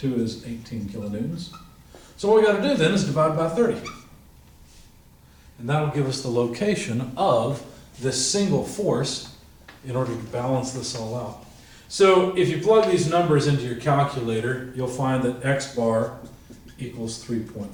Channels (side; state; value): both; identical; correlation 1.00